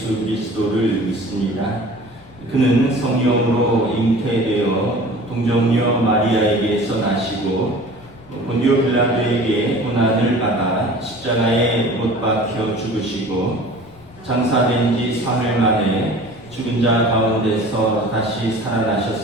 그리스도를 믿습니다. 그는 성령으로 잉태되어 동정녀 마리아에게서 나시고 본디오 빌라도에게 고난을 받아 십자가에 못 박혀 죽으시고 장사된 지 사흘 만에 죽은 자 가운데서 다시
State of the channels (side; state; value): left; noise; rumble, 27 dB below the sound